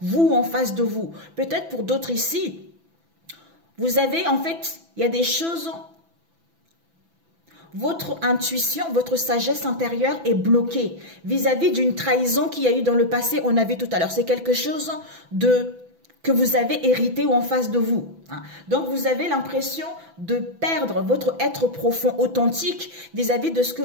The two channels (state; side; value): late; left; 6.0 ms